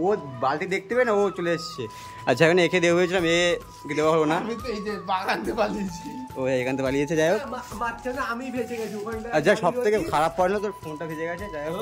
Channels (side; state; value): both; identical; correlation 1.00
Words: ও বালতি দেখতে পেয়ে না, ও চলে এসছে। আচ্ছা এখানে একে দেওয়া হয়েছিলাম, একে দেওয়া হলো না, ও এখান থেকে পালিয়েছে। যাই হোক, আচ্ছা সব থেকে খারাপ পড়লো তোর ফোনটা ভেজে গেছে। যাই হোক,